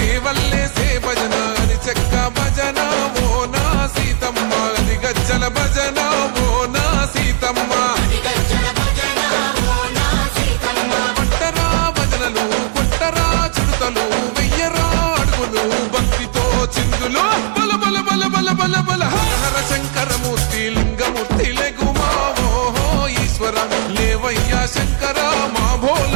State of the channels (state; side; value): silent; left; digital silence